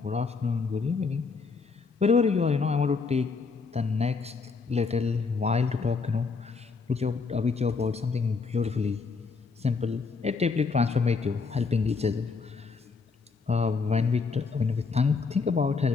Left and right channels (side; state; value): right; quieter; 4.7 dB